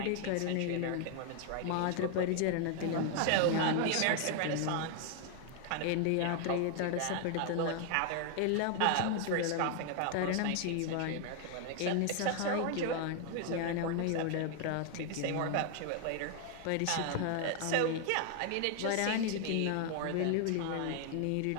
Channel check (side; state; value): both; different; correlation 0.00